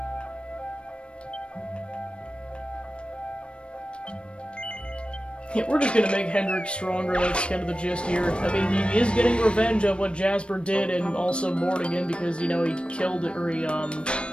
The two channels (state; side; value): late; right; 0.058 ms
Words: Yeah, we're just gonna make Hendrik stronger, that's kind of the gist here. I mean, he is getting revenge of what Jasper did, and also Mortigan, because, you know, he killed, or he,